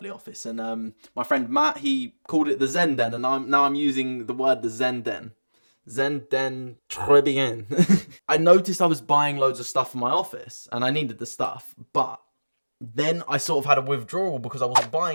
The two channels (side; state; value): both; inverted; correlation -1.00